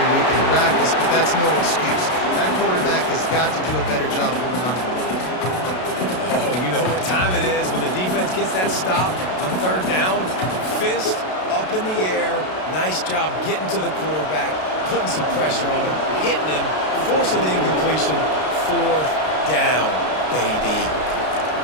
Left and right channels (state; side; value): late; right; 32 ms